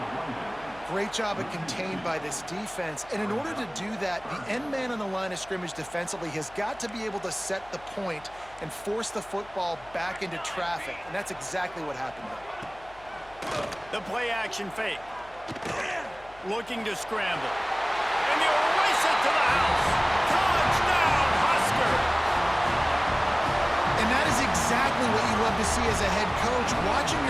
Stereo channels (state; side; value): noise; left; hum, 24 dB below the sound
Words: Great job of contained by this defense. And in order to do that, the end man on the line of scrimmage defensively has got to be able to set the point and force the football back into traffic. And that's exactly what happened there. The play action fake. Looking to scramble. And they'll race it to the house. Touchdown, Husker! And that is exactly what you love to see as a head coach, watching